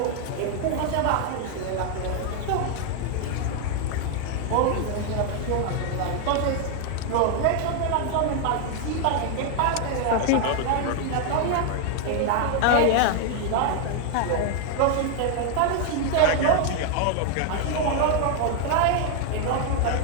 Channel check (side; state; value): both; different; correlation 0.00